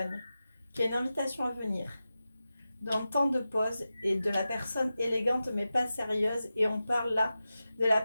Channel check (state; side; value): inverted; both; correlation -0.93